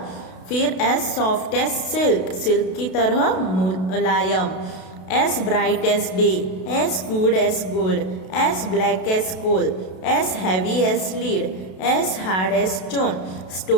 फिर as soft as silk. Silk की तरह मुलायम. As bright as day. As good as gold. As black as coal. As heavy as lead. As hard as stone,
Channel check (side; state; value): right; late; 32 ms